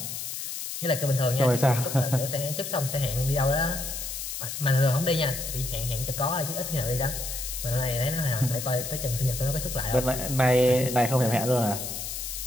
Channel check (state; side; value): noise; left; hiss, 6 dB below the sound